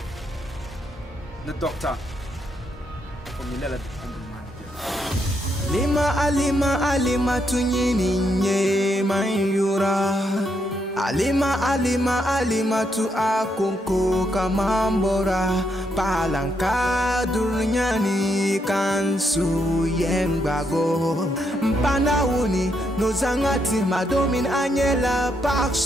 le docteur comme il est là Alima tunyini nye mayura Alima tu akunko kamambora Palanka dunyani kansu yengbago Mpana uni nozangati madomin anyela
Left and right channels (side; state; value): both; normal; correlation 0.78